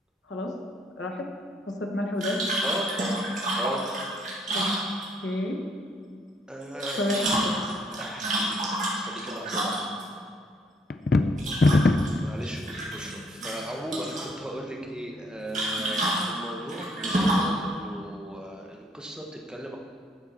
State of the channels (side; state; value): both; normal; correlation 0.68